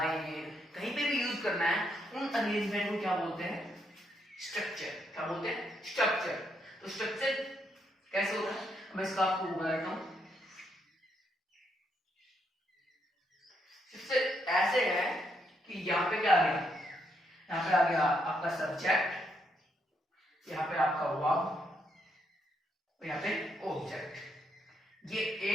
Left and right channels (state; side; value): normal; both; correlation 0.76